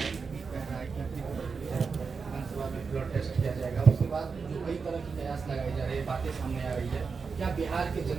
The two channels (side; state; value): left; quieter; 5.1 dB